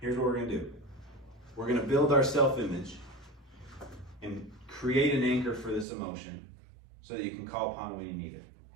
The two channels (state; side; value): drops out; left; at 5.9 s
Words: Here's what we're going to do. We're going to build our self-image and create an anchor for this emotion so that you can call upon it when you need it.